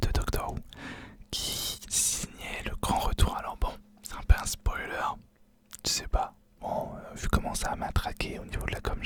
Doctor Who, qui Jack, et au niveau de la com,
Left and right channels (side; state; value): both; identical; correlation 1.00